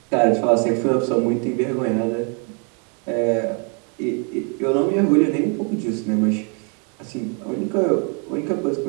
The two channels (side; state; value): left; quieter; 38.3 dB